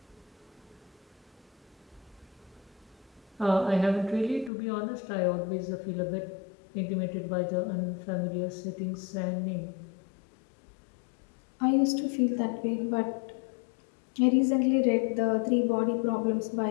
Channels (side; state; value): right; drops out; at 4.5 s